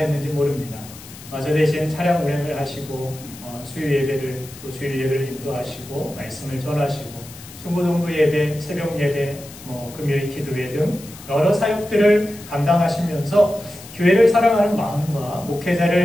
모릅니다. 저 대신 차량 운행을 하시고 수요 예배를 또 주일 예배를 인도하시고 말씀을 전하시고 중고등부 예배, 새벽 예배, 금요일 기도회 등 여러 사역들을 감당하시면서 교회를 사랑하는 마음과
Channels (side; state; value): left; noise; hiss, 17 dB below the sound